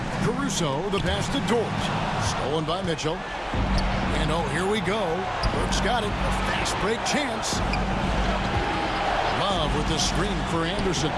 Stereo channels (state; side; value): identical; both; correlation 1.00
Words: Caruso, the pass to Dort. Stolen by Mitchell. And oh, here we go. Burks got it. A fast break chance. Love with the screen for Anderson.